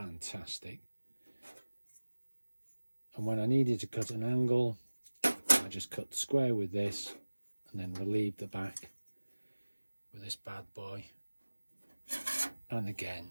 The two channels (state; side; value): inverted; both; correlation -1.00